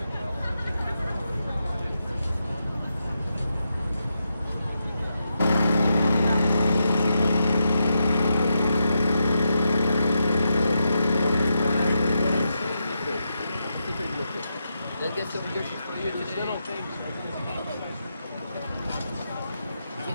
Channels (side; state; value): both; inverted; correlation -0.85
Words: Let's get some dishes for you today. Little things. It